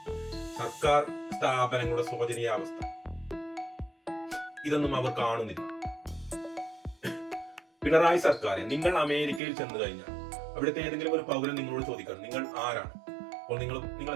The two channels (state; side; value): drops out; left; at 9.4 s